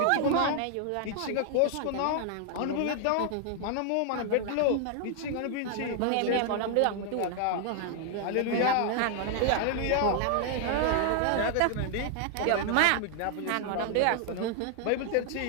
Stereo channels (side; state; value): both; different; correlation 0.00